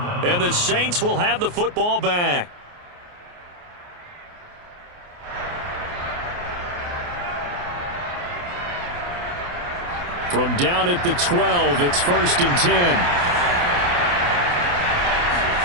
And the Saints will have the football back. From down at the 12, it's 1st and 10.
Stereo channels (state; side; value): late; left; 28 ms